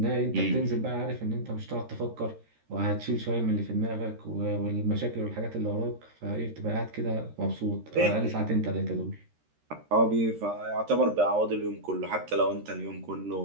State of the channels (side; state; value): left; late; 13 ms